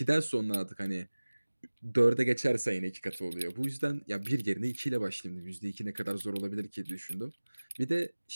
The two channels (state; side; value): inverted; both; correlation -1.00